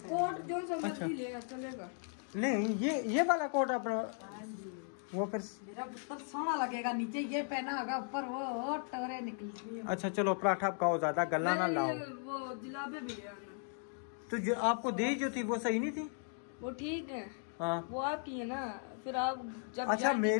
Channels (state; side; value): silent; right; 53 dB below the other